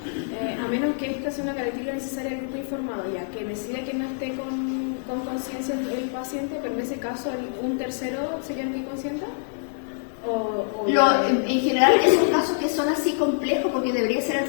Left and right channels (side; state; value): right; silent; digital silence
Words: a menos que esta sea una característica necesaria del grupo informado, ya que decide que no esté con conciencia el paciente, pero en ese caso un tercero sería el que consienta. En general esos casos que son así complejos, porque debería ser el